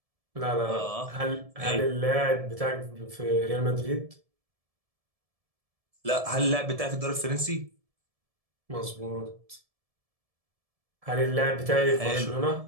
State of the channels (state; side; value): late; left; 1.7 ms